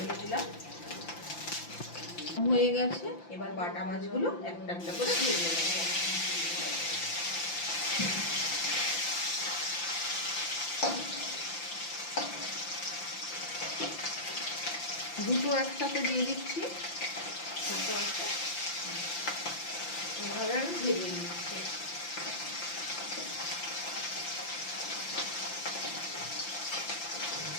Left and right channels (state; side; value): late; right; 5.8 ms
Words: দিলাম, হয়ে গেছে। এবার বাটা মাছগুলো একটা একটা করে দিয়ে দেবো। দুটো একসাথে দিয়ে দিচ্ছি, দুটো একটা এভাবে আমি ভেজে নিচ্ছি।